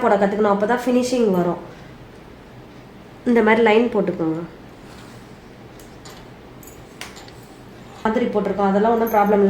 போட கற்றுக்கணும், அப்போ தான் ஃபினிஷிங் வரும். இந்த மாதிரி லைன் போட்டுக்கோங்க. மாதிரி போட்டிருக்கோம், அதெல்லாம் ஒன்றும் ப்ராப்ளம்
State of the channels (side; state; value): both; identical; correlation 1.00